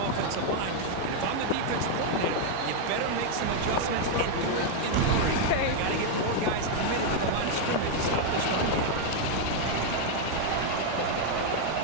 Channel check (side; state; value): both; different; correlation 0.00